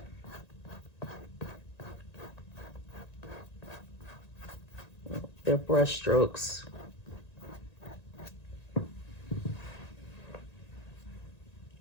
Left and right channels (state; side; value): late; right; 1.9 ms